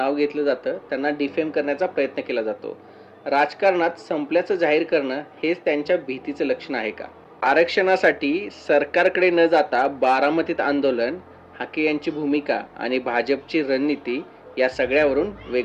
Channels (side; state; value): both; identical; correlation 1.00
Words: घेतलं जातं, त्यांना डिफेम करण्याचा प्रयत्न केला जातो. राजकारणात संपल्याचं जाहीर करणं हेच त्यांच्या भीतीचं लक्षण आहे का? आरक्षणासाठी सरकारकडे न जाता बारामतीत आंदोलन, हाके यांची भूमिका आणि भाजपची रणनीती या सगळ्यावरून